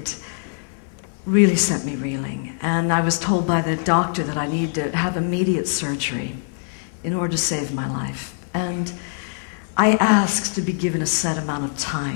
really sent me reeling. And I was told by the doctor that I needed to have immediate surgery in order to save my life. And I asked to be given a set amount of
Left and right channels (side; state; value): right; silent; 58 dB below the other